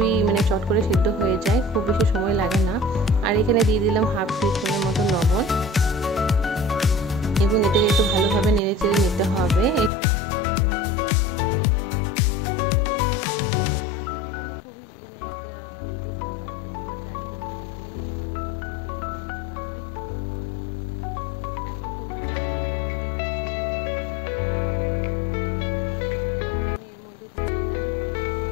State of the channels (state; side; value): drops out; right; at 9.9 s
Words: চট করে সিদ্ধ হয়ে যায়, খুব বেশি সময় লাগে না। আর এখানে দিয়ে দিলাম হাফ টিস্পুনের মতো লবণ এবং এটাকে একটু ভালোভাবে নেড়ে চেড়ে নিতে হবে, একটু ভালোভাবে সেদ্ধ করে নিতে হবে। বাচ্চাদের জন্য খুবই একটা হেলদি খাবার। তো তোমরা চাইলে কিন্তু এটা টিফিনে দিতে পারো, ঝটপট তৈরি করে নিতে পারবে। এখন তোমরা চাইলে এর মধ্যে ক্যাপসিকাম অ্যাড করতে পারো। এখন আমি এর মধ্যে দিয়ে দিলাম